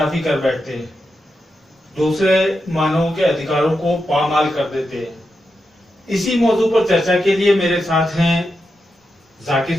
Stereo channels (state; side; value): normal; both; correlation 0.87